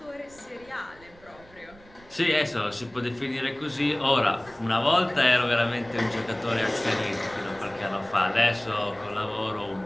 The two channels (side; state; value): right; noise; rumble, 25 dB below the sound